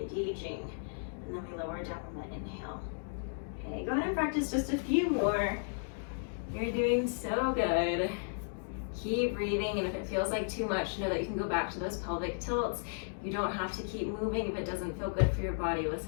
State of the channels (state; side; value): silent; right; digital silence